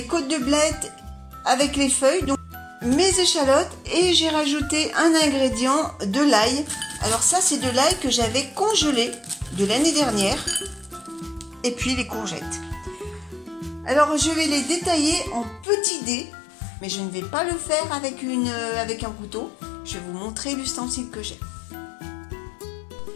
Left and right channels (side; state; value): right; drops out; at 15.7 s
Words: côtes de blettes avec les feuilles, donc mes échalotes, et j'ai rajouté un ingrédient, de l'ail. Alors ça c'est de l'ail que j'avais congelé de l'année dernière. Et puis les courgettes. Alors je vais les détailler en petits dés. Mais je ne vais pas le faire avec un couteau. Je vais vous montrer l'ustensile que j'ai.